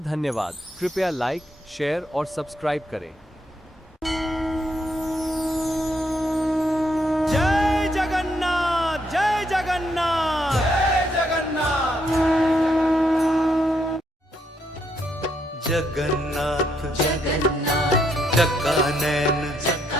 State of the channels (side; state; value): both; normal; correlation 0.75